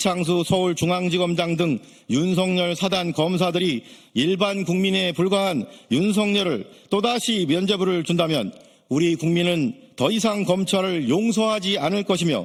서울중앙지검장 등 윤석열 사단 검사들이 일반 국민에 불과한 윤석열을 또다시 면죄부를 준다면 우리 국민은 더 이상 검찰을 용서하지 않을 것이며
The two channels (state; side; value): identical; both; correlation 1.00